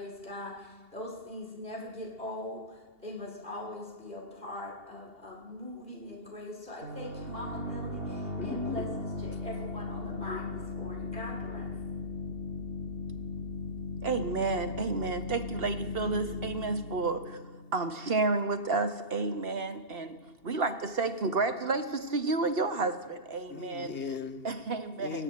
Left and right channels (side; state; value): left; late; 2.8 ms